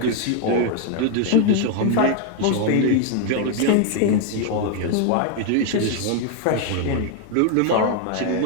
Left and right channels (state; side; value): different; both; correlation 0.00